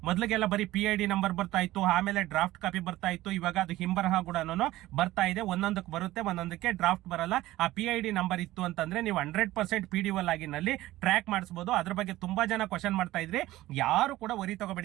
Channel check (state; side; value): quieter; left; 16.5 dB